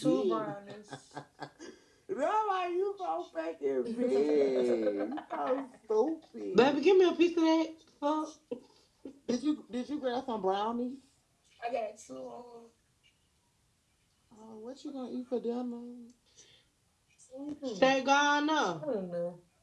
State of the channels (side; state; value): both; identical; correlation 1.00